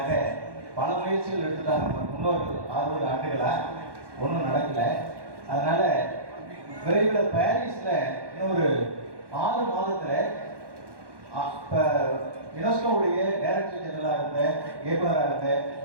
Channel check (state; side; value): late; left; 1.1 ms